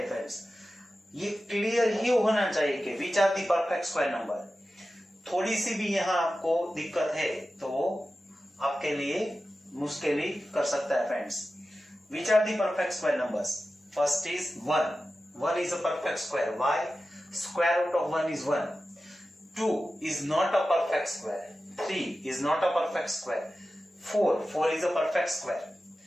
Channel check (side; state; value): both; normal; correlation 0.94